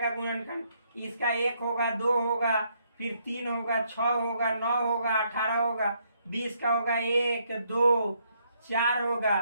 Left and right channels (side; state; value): both; inverted; correlation -0.72